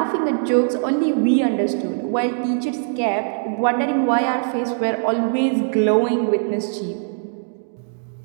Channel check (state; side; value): silent; left; 65 dB below the other